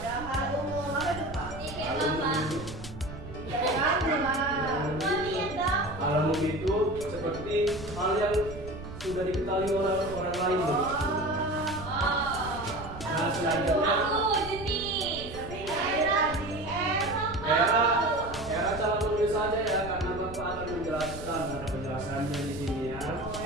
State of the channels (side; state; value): right; noise; rumble, 12 dB below the sound